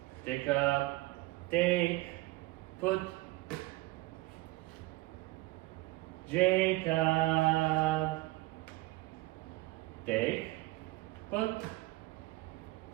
Jacob, take, put. Jacob, take, put.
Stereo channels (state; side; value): quieter; left; 20.3 dB